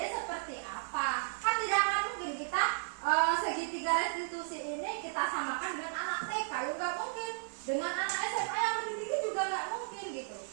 seperti apa. Kan tidak akan mungkin kita segitiga restitusi ini kita samakan dengan anak TK, ya nggak mungkin. Dengan anak SMA yang lebih tinggi juga nggak mungkin gitu.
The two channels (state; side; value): silent; left; 55 dB below the other